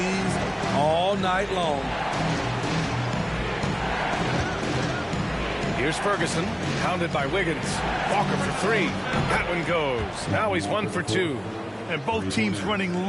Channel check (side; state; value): both; identical; correlation 1.00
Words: all night long. Here's Ferguson, pounded by Wiggins. Walker for three. That one goes. Now he's 1 for 2. And both teams running